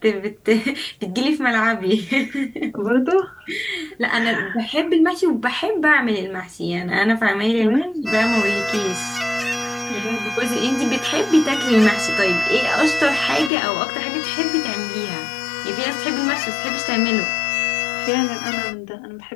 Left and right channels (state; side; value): drops out; right; at 13.5 s